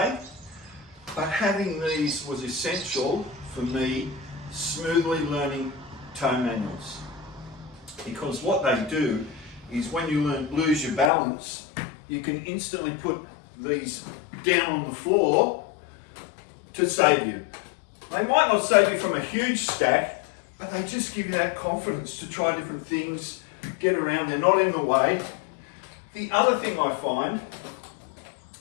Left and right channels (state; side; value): drops out; right; at 11.1 s